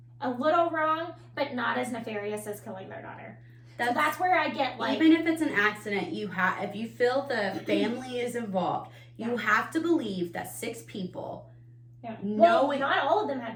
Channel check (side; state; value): both; identical; correlation 1.00